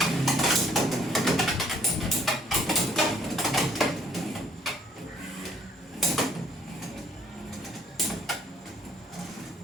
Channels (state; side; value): normal; both; correlation 0.63